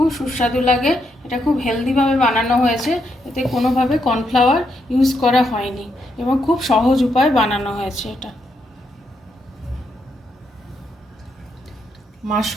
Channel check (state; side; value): normal; both; correlation 0.79